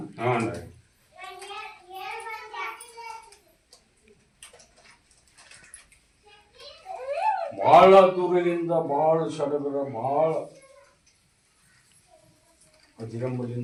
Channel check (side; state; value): both; identical; correlation 1.00